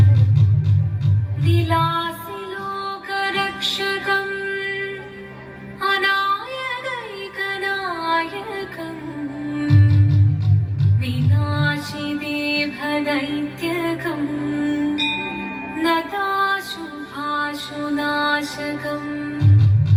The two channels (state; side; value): identical; both; correlation 1.00